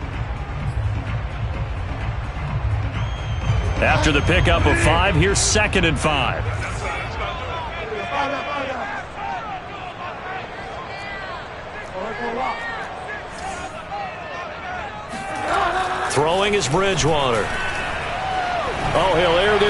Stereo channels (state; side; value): identical; both; correlation 1.00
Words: After the pickup of 5, here's 2nd and 5. Throwing is Bridgewater. Oh, he'll air